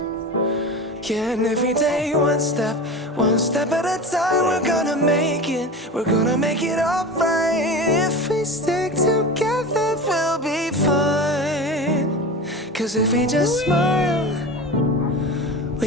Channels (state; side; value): normal; both; correlation 0.30